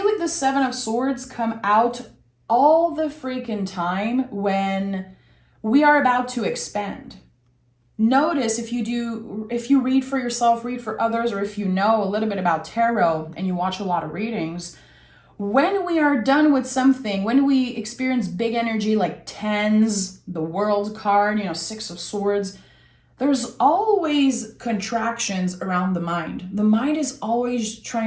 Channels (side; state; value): both; identical; correlation 1.00